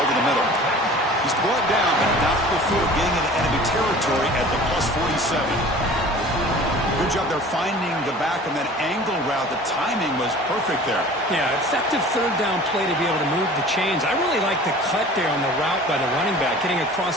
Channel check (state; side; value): normal; both; correlation 0.44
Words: the middle. He's brought down, but not before getting into enemy territory at the +47. Good job there finding the back on that angle route. The timing was perfect there. Yeah, effective third down play to be able to move the chains. I really like the cut there on the route by the running back, getting